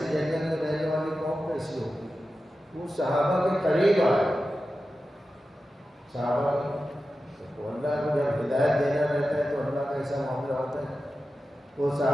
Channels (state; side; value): normal; both; correlation 0.93